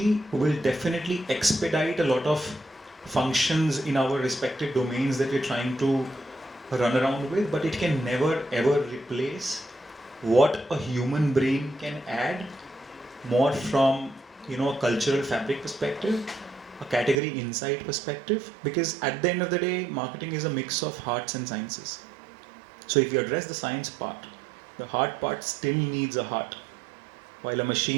will definitely expedite a lot of functions in our respective domains that we're trying to run around with, but it can never ever replace what a human brain can add more from a cultural fabric perspective, a category insight perspective, because at the end of the day, marketing is a mix of arts and sciences. So if you address the science part, the heart part still needs a heart. While a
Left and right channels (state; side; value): drops out; left; at 17.2 s